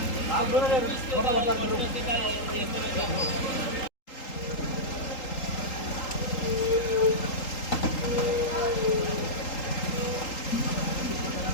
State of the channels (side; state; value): right; late; 3.8 ms